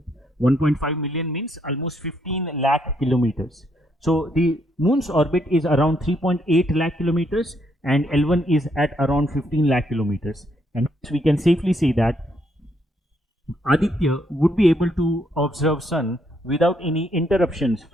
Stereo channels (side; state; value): both; normal; correlation 0.73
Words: 1.5 million means almost 15 lakh kilometers. So the moon's orbit is around 3.8 lakh kilometers and L1 is at around 15 lakh kilometers. And we can safely say that Aditya would be able to observe sun without any interruptions